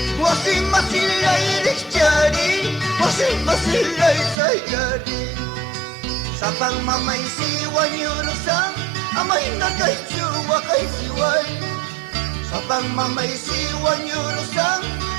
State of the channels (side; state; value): left; drops out; at 4.4 s